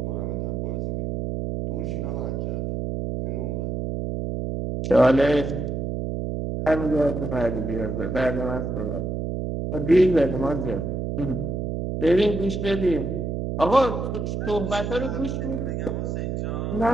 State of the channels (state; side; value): noise; right; hum, 2 dB below the sound